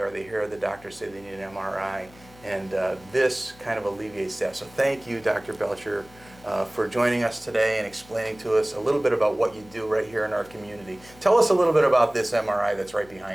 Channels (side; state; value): left; noise; hum, 24 dB below the sound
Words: or they hear the doctor say they need an MRI. And this kind of alleviates that. So thank you, Dr. Belcher, for joining us today and explaining to us a little bit about what you do right here in our community. Tell us a little bit about this MRI that's right